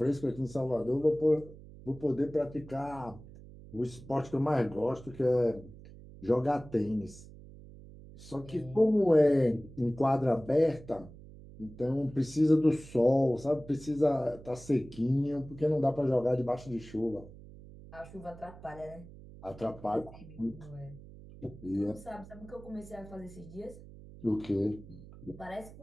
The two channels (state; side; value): noise; right; hum, 18 dB below the sound